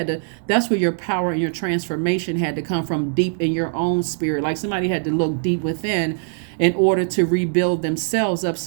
to, that's where your power and your transformation had to come from, deep in your own spirit. Like somebody had to look deep within in order to rebuild themselves up.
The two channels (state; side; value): silent; left; digital silence